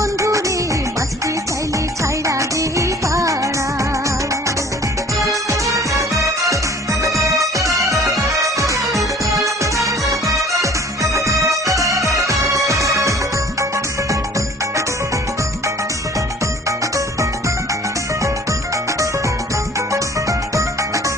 রে বাঁচতে চাইলে ছাইড়া দে পাড়া।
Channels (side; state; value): both; normal; correlation 0.51